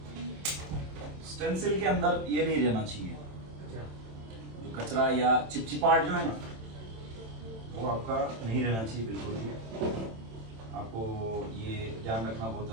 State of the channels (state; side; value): late; left; 27 ms